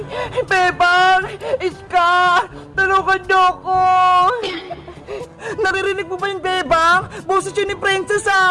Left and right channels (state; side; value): identical; both; correlation 1.00